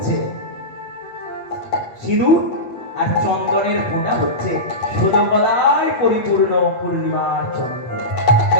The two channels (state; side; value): late; right; 8.4 ms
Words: সিঁদুর, আর চন্দনের ফোঁটা হচ্ছে ষোলকলায় পরিপূর্ণ পূর্ণিমার চন্দ্র।